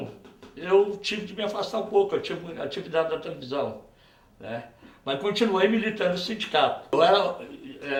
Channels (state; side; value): identical; both; correlation 1.00